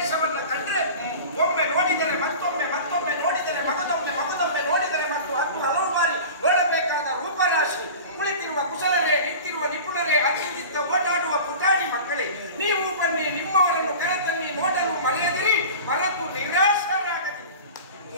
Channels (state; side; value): inverted; both; correlation -0.36